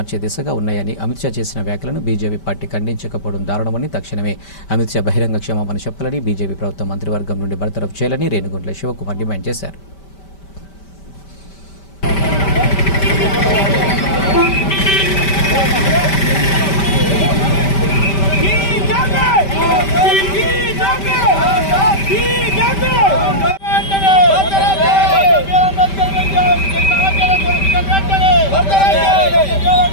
దిశగా ఉన్నాయని, అమిత్ షా చేసిన వ్యాఖ్యలను బీజేపీ పార్టీ ఖండించకపోవడం దారుణమని, తక్షణమే అమిత్ షా బహిరంగ క్షమాపణ చెప్పాలని, బీజేపీ ప్రభుత్వం మంత్రివర్గం నుండి బర్తరఫ్ చేయాలని రేణుగుంట్ల శివకుమార్ డిమాండ్ చేశారు.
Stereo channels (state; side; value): late; right; 5.1 ms